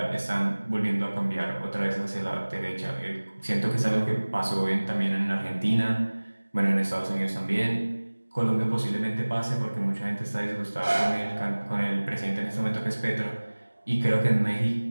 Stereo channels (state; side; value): inverted; both; correlation -1.00